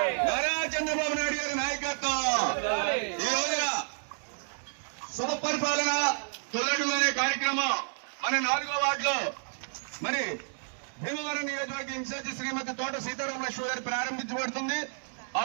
నారా చంద్రబాబు నాయుడు గారి నాయకత్వం. ఈ రోజున శుభ పరిపాలన తొలడు అనే కార్యక్రమం మన 4వ వార్డులో మరి భీమవరం నియోజకవర్గ ఇన్ఛార్జి శ్రీమతి తోట సీతారామ లక్ష్మి గారు ప్రారంభించబడుతుంది.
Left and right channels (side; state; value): left; silent; digital silence